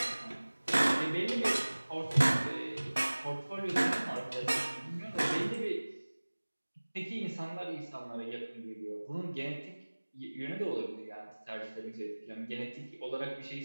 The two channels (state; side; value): inverted; both; correlation -1.00